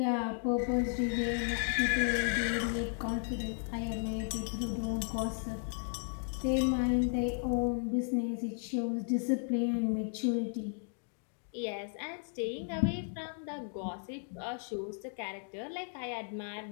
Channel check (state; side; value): silent; right; 55 dB below the other